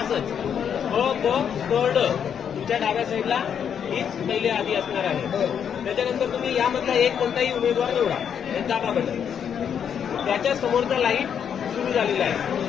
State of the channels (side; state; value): right; quieter; 8.1 dB